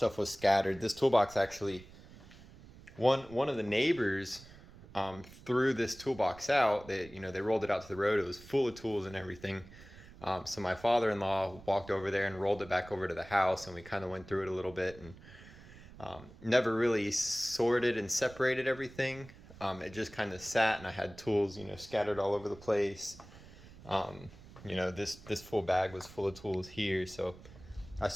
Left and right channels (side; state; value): right; noise; rumble, 19 dB below the sound